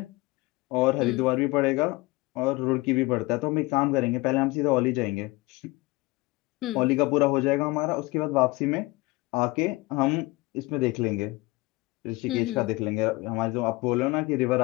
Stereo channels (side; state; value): right; quieter; 22.6 dB